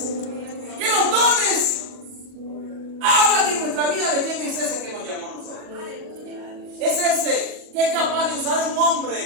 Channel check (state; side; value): late; left; 40 ms